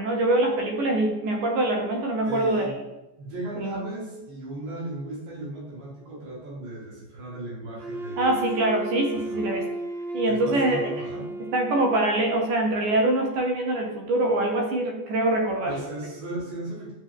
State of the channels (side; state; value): left; late; 14 ms